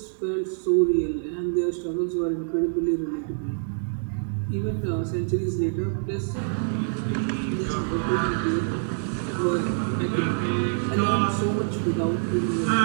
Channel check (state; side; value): silent; left; 60 dB below the other